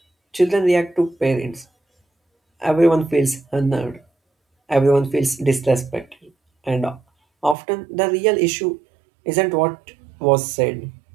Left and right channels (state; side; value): drops out; left; at 7.6 s